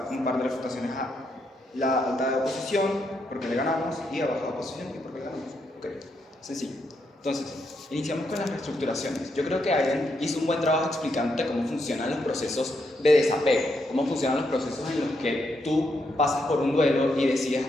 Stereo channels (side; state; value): both; normal; correlation 0.79